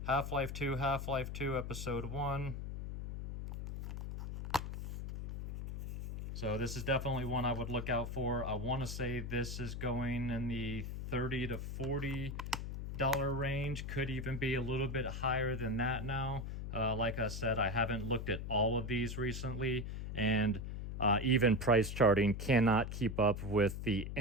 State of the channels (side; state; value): left; noise; hum, 6 dB below the sound